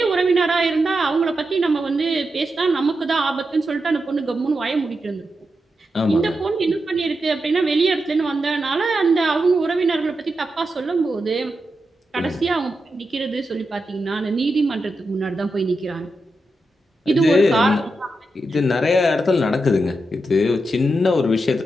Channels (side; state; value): both; normal; correlation 0.87